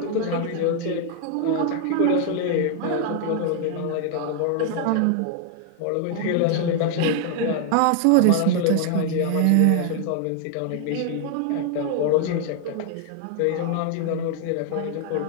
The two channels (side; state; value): both; different; correlation 0.00